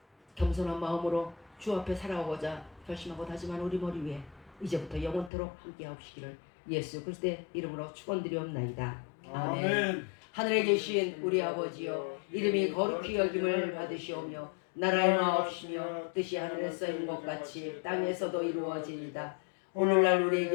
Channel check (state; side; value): drops out; right; at 5.3 s